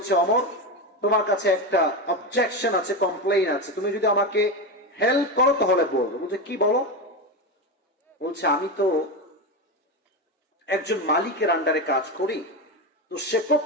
ওমর, তোমার কাছে একটা অবজেকশন আছে, কমপ্লেইন আছে, তুমি যদি আমাকে হেল্প করো তাহলে বলবো। বলছে, কি বলো? বলছে, আমি তো একজন মালিকের আন্ডারে কাজ করি, তো সে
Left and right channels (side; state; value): both; normal; correlation 0.16